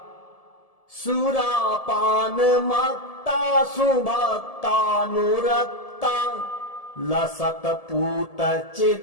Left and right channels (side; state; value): right; late; 1.7 ms